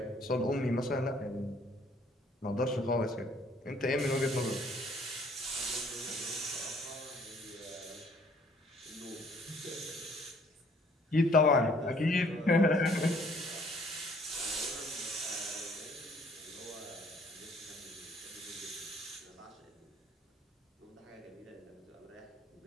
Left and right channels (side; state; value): both; normal; correlation 0.60